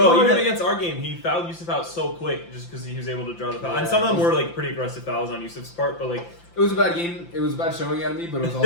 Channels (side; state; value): right; late; 5.8 ms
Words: even against our game, he fouled Yusuf out so quick just because he was able to draw the foul. And some of them were like pretty aggressive fouls on Yusuf's part, but like It was a bad game. It was a bad showing out of me, but it was